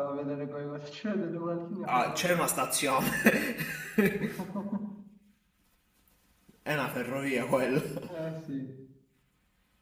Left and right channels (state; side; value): identical; both; correlation 1.00